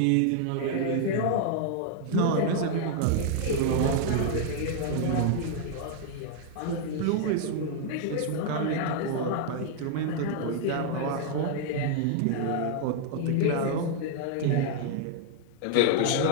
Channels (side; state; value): both; different; correlation 0.00